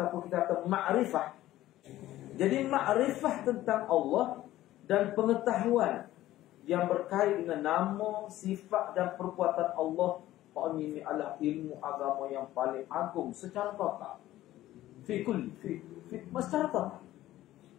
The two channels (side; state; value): right; quieter; 14.8 dB